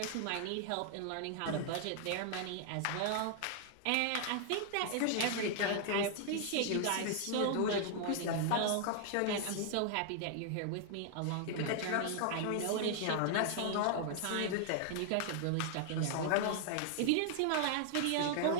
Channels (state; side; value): different; both; correlation 0.00